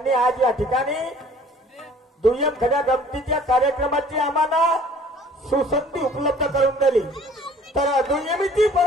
आज या ठिकाणी दुय्यम खड्या गमतीच्या कार्यक्रमाची आम्हाला सुसंधी उपलब्ध करून दिली। तर दुय्यमीची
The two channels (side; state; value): both; normal; correlation 0.52